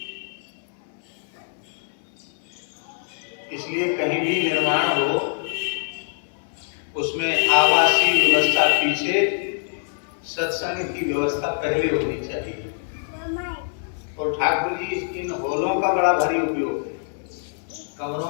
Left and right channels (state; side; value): silent; right; 63 dB below the other